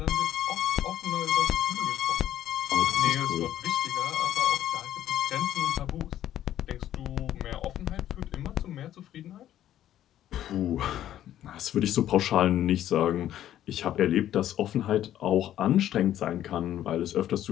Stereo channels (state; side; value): quieter; right; 12.0 dB